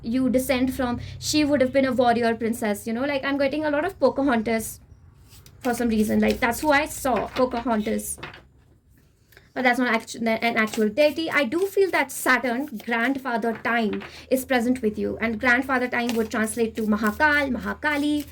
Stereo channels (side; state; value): both; identical; correlation 1.00